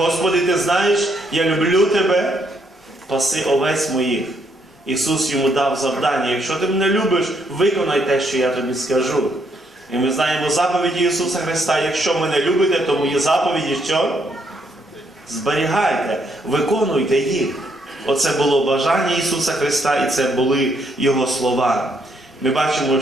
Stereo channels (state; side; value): normal; both; correlation 0.73